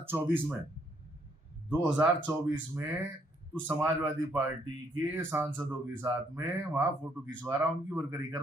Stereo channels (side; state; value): both; normal; correlation 0.70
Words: में। 2024 में तो समाजवादी पार्टी के सांसदों के साथ में वहां फोटो खिंचवा रहा, उनकी वर्करी कर